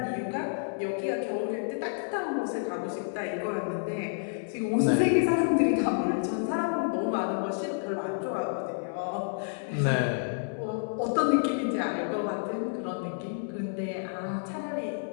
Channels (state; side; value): silent; right; 58 dB below the other